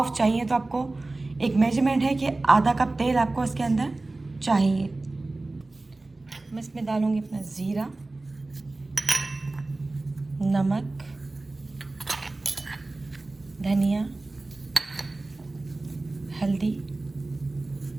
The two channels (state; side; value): quieter; left; 3.1 dB